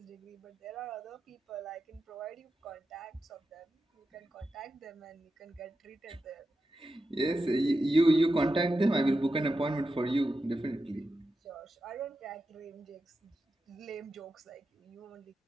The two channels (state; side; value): normal; both; correlation 0.90